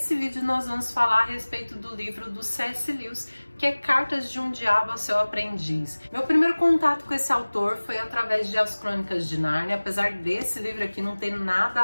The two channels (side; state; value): both; inverted; correlation -1.00